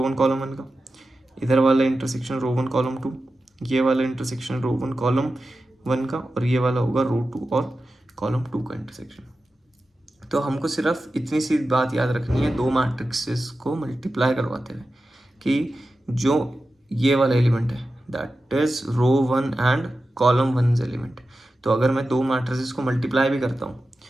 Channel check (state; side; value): normal; both; correlation 0.93